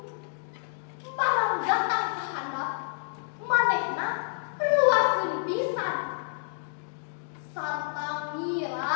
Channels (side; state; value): right; silent; digital silence